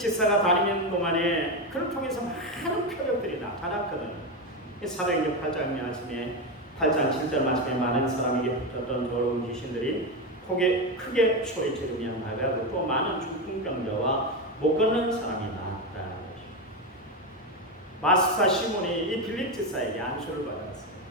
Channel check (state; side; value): normal; both; correlation 0.13